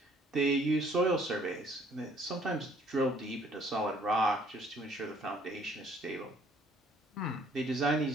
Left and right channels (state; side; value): normal; both; correlation 0.60